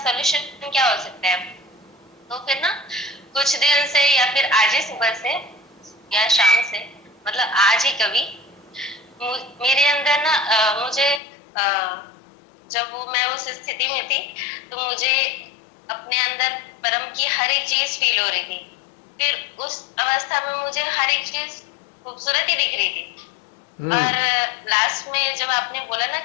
क्या हो सकता है। तो फिर ना कुछ दिन से या फिर आज ही सुबह से या शाम से, मतलब आज ही कभी मेरे अंदर ना मुझे जब मैं उस स्थिति में थी तो मुझे अपने अंदर परम की हर एक चीज फील हो रही थी। फिर उस अवस्था में मुझे हर एक चीज खूबसूरत ही दिख रही थी। और लास्ट में जब आपने बोला ना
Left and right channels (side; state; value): right; drops out; at 11.2 s